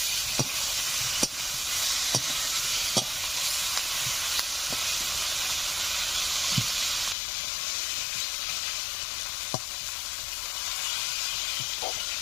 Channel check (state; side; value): drops out; right; at 7.2 s